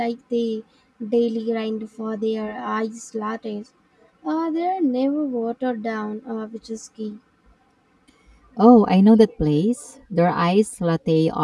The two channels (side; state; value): both; identical; correlation 1.00